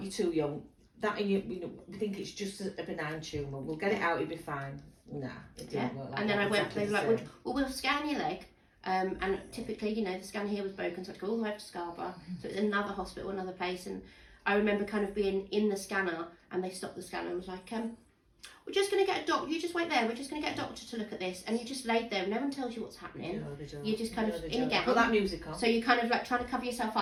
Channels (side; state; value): both; identical; correlation 1.00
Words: too young. That and you know, we think it's just a benign tumour. We'll get it out. It'll be fine. Nah, it didn't work like and then that. I went. They were like, "Well, we'll scan your leg." And typically, you know, the scan here was broken, so I had to go all the way up to Scarborough. So it was another hospital, another place. And I remember kind of being in the scanner, and they stopped the scanner and was like, "We're just going to get a doctor. You just wait there. We're just going to get a doctor to look at this." And you just laid there. No one tells you what's happening. No, they don't. You're just kind of in a gown. Put that music on. So you're kind of like trying to cover yourself